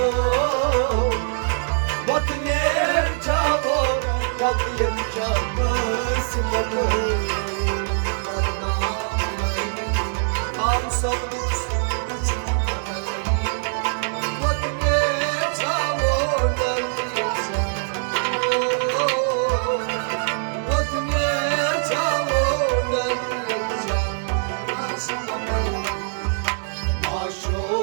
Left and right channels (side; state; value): left; silent; digital silence